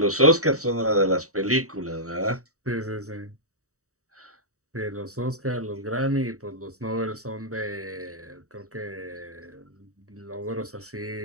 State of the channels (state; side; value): late; left; 0.65 ms